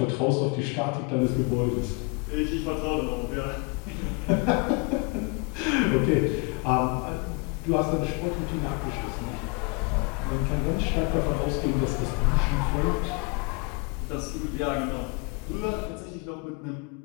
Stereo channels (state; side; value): quieter; right; 30.6 dB